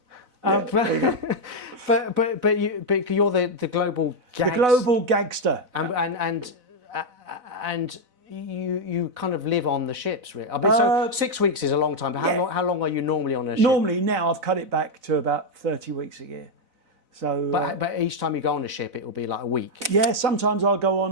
But you're the global gangster. The global gangster. And you kind of live on the ships, really. I mean, so 6 weeks is a long time, but how long are you normally on a ship? Normally now I've cut it back to about 30 weeks a year. So, but each time you go on a ship, it will be like a week. Yeah, sometimes I'll go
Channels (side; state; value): left; late; 4.0 ms